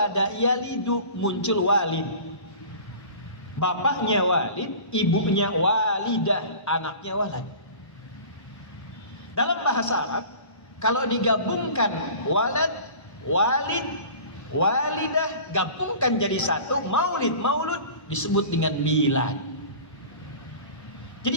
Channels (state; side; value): late; right; 1.2 ms